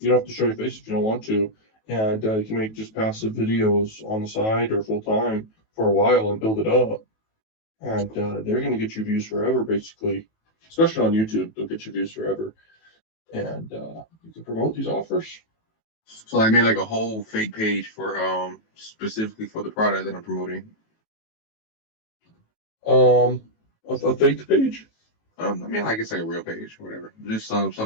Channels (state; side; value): late; right; 18 ms